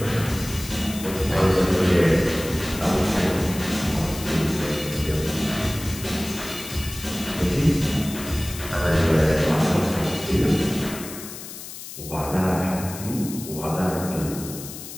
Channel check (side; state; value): left; noise; hiss, 12 dB below the sound